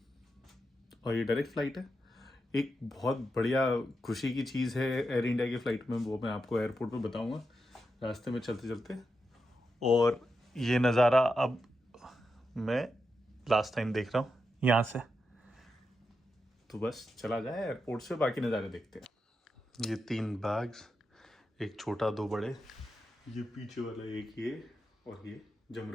ये डायरेक्ट फ़्लाइट है। एक बहुत बढ़िया खुशी की चीज़ है एयर इंडिया की फ़्लाइट में, वो मैं आपको एयरपोर्ट पे बताऊंगा रास्ते में चलते चलते। और ये नज़ारा अब मैं लास्ट टाइम देख रहा हूँ यहाँ से, तो बस चला जाए एयरपोर्ट से, बाकी नज़ारे देखते हैं। ये 3 बैग्स, एक छोटा 2 बड़े, ये पीछे वाला एक, ये और ये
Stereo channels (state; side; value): normal; both; correlation 0.87